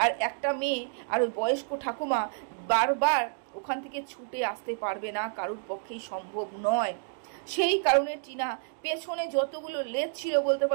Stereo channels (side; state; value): left; silent; digital silence